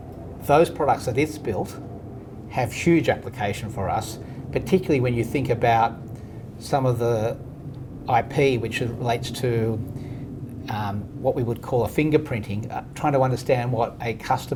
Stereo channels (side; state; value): both; identical; correlation 1.00